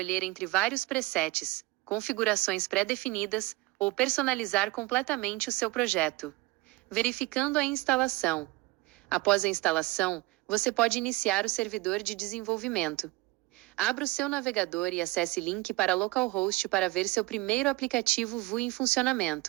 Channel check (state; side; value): quieter; left; 21.7 dB